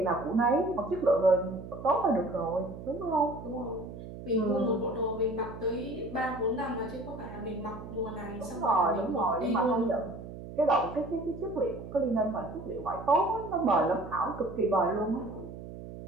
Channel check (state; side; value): noise; right; hum, 12 dB below the sound